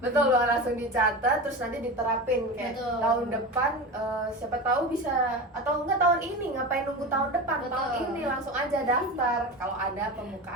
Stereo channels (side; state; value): both; normal; correlation 0.26